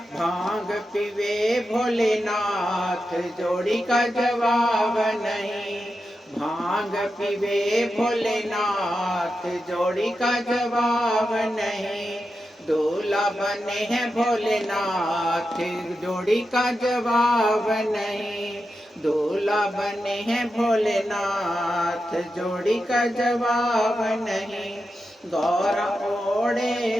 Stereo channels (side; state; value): both; normal; correlation 0.89